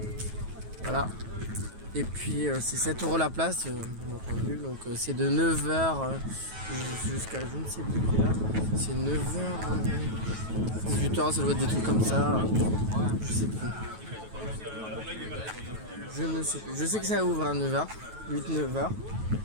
Voilà. Et puis c'est 7 € la place, bien entendu. Donc c'est de 9h jusqu'à je ne sais plus quelle heure. C'est 9h, 18h, ça doit être des trucs comme ça. Je sais plus. Je ne sais plus. Je sais que ça ouvre à 9h, 8-9h.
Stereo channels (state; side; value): late; left; 9.2 ms